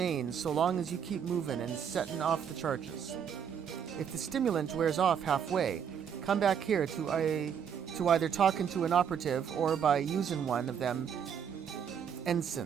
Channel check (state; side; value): quieter; left; 7.9 dB